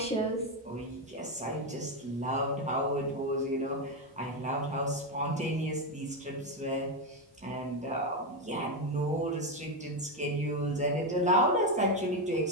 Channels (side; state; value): both; normal; correlation 0.09